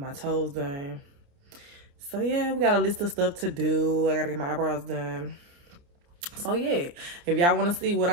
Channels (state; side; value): late; left; 29 ms